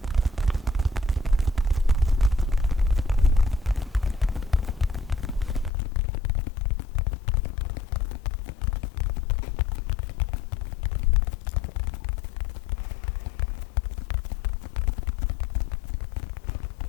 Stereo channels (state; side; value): drops out; right; at 5.7 s